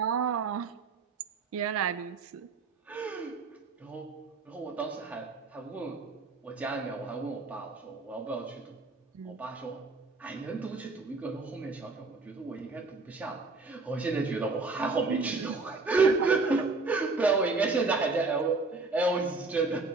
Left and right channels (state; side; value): quieter; left; 3.8 dB